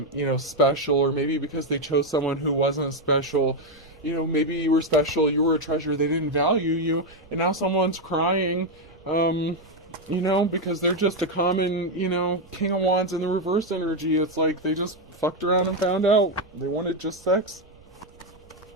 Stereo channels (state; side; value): noise; right; rumble, 27 dB below the sound